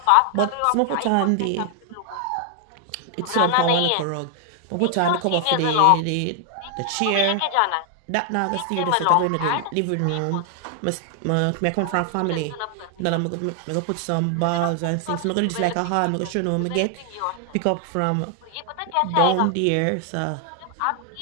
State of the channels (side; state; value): both; different; correlation 0.00